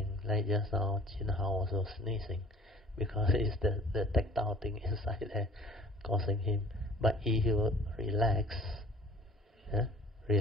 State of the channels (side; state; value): both; normal; correlation 0.50